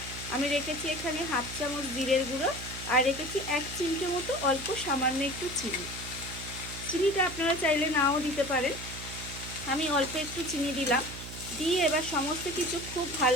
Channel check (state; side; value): noise; right; hum, 11 dB below the sound